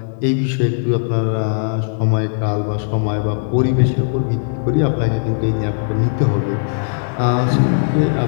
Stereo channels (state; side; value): silent; right; 60 dB below the other